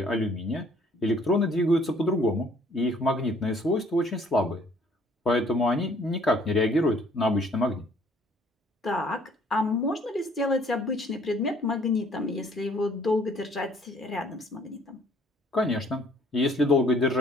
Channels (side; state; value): both; normal; correlation 0.60